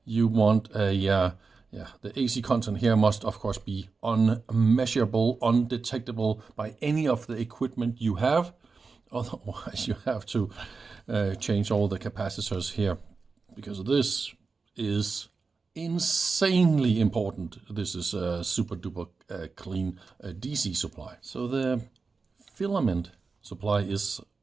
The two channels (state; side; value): quieter; left; 4.5 dB